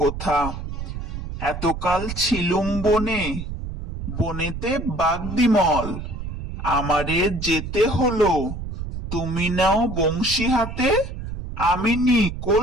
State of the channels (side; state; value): right; noise; rumble, 7 dB below the sound